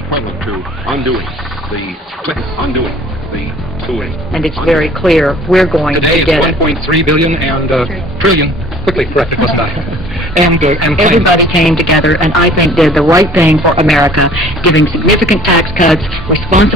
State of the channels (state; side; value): normal; both; correlation 0.50